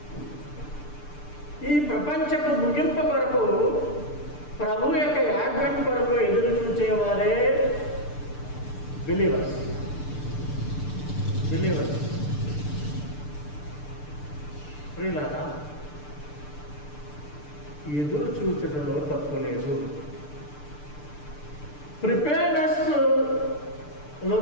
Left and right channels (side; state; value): right; late; 6.8 ms